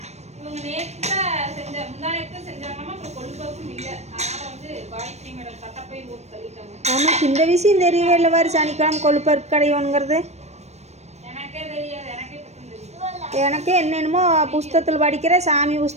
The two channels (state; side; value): late; left; 0.32 ms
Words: இவங்க நேற்று தான் முந்தானேத்து செஞ்சாங்கன்னா அப்புறம் கொள்ளுப்பருப்பும் இல்லை. அதனால வந்து காயத்ரி மேடம் தட்டப்பை போட்டு தள்ளிட்டாங்க. நமக்கு இந்த விஷயம் தெரியவே இல்லை. வாரு சனிக்கிழமை கொள்ளுப்பருப்பு கடையோங்கிறது எனக்கே தெரியாது. எனக்கே என்னென்னமோ புஸ்தகத்தில் படிக்கிறேன், சாமி